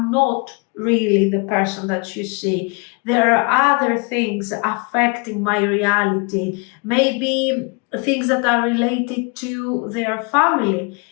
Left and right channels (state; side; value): quieter; right; 32.3 dB